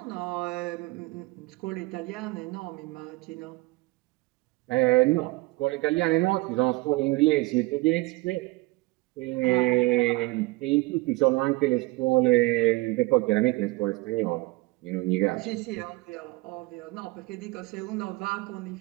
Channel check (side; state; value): left; quieter; 22.1 dB